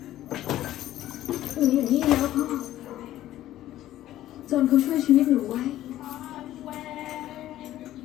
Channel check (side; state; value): right; quieter; 13.7 dB